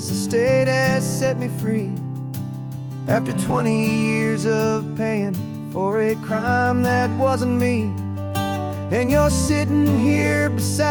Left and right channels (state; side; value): identical; both; correlation 1.00